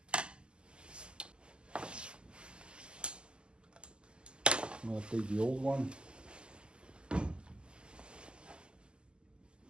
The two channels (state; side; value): late; left; 0.049 ms